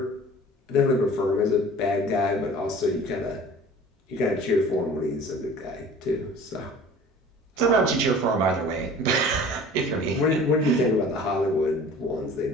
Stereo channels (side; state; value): both; normal; correlation 0.44